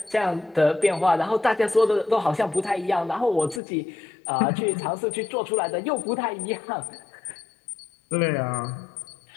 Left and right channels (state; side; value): drops out; right; at 3.6 s